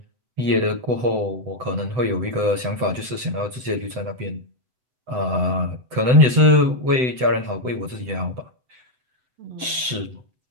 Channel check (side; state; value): left; late; 7.9 ms